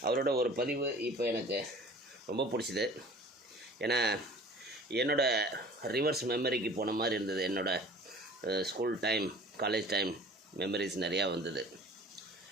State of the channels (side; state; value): both; normal; correlation 0.46